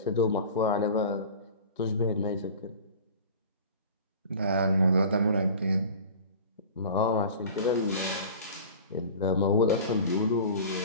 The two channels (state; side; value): inverted; both; correlation -0.39